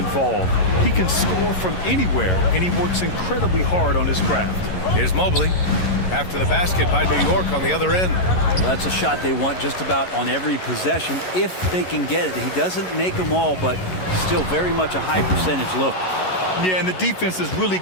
He can score from anywhere, and he works incredibly hard on his craft. Here's Mobley after the basket by New York on the other end. Well, that's a shot they want just about on every possession if they can get it. He doesn't make them all, but still very much a high percentage look. Yeah, and the defense has really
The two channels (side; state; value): right; late; 11 ms